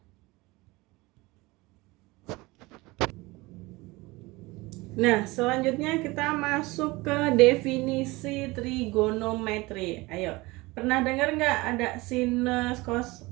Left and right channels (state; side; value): quieter; left; 22.3 dB